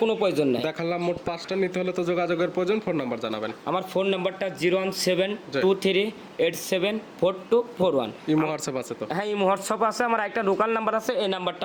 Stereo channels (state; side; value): identical; both; correlation 1.00